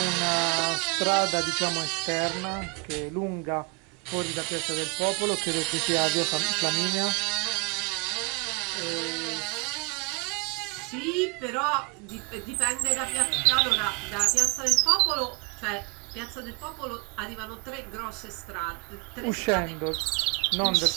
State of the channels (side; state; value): left; quieter; 31.2 dB